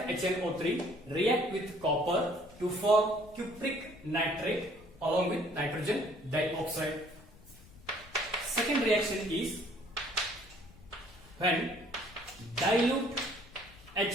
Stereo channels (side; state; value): left; noise; rumble, 22 dB below the sound